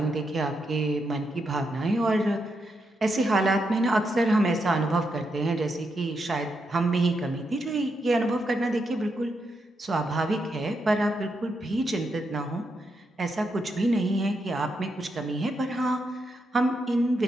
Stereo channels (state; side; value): normal; both; correlation 0.82